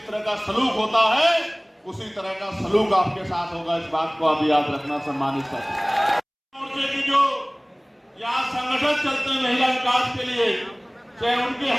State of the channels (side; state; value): both; identical; correlation 1.00